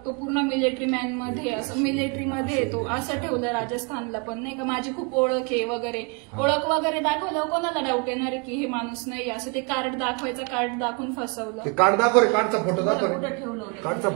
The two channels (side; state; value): left; quieter; 33.1 dB